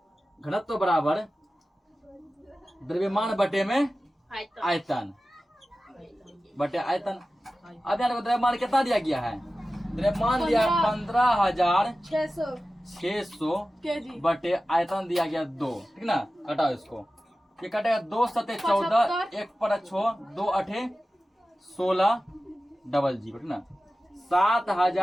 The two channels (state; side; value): normal; both; correlation 0.95